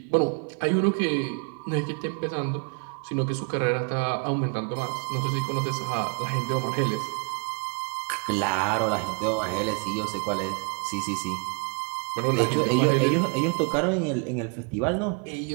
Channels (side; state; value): left; quieter; 37.8 dB